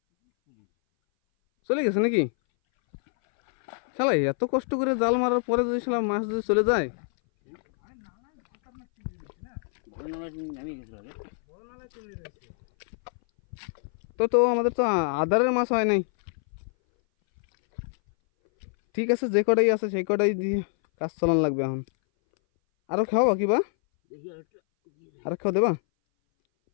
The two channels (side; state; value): right; silent; 59 dB below the other